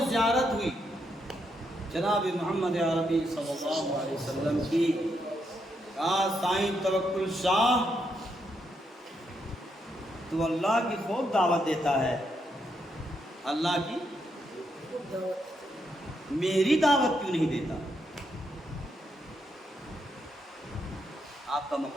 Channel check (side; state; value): both; normal; correlation 0.79